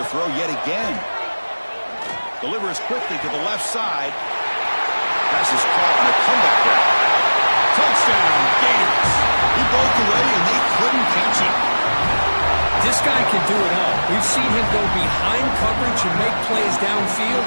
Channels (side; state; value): both; inverted; correlation -1.00